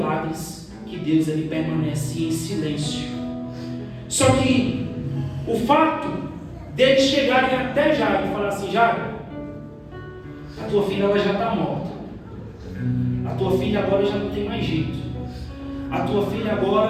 que Deus ele permanece em silêncio. Só que o fato deles chegarem até Jairo e falar assim: Jairo, a tua filha ela já está morta. A tua filha agora já não tem mais jeito. A tua filha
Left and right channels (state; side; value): identical; both; correlation 1.00